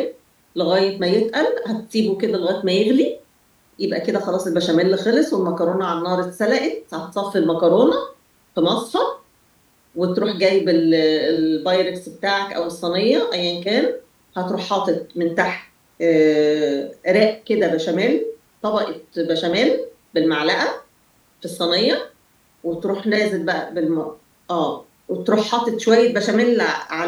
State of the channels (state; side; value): identical; both; correlation 1.00